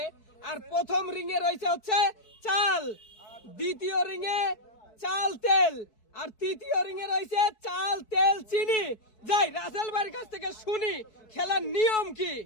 আর প্রথম রিং এ রয়েছে হচ্ছে চাল, দ্বিতীয় রিং এ চাল তেল, আর তৃতীয় রিং এ রয়েছে চাল তেল চিনি। যাই রাসেল ভাইয়ের কাছ থেকে শুনি খেলার নিয়ম কি।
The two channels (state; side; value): late; right; 4.6 ms